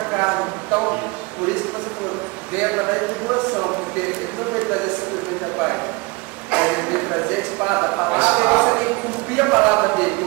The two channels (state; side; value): quieter; left; 27.0 dB